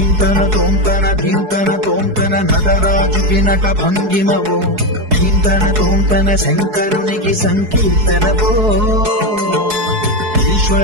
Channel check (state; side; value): late; left; 4.7 ms